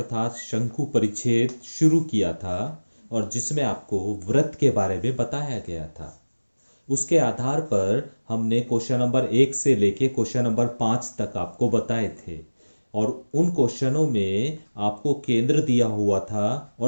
शंकु परिच्छेद शुरू किया था और जिसमें आपको वृत्त के बारे में बताया गया था। उसके आधार पर हमने क्वेश्चन नंबर 1 से लेके क्वेश्चन नंबर 5 तक आपको बताए थे और उन क्वेश्चनों में आपको केंद्र दिया हुआ था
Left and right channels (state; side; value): inverted; both; correlation -1.00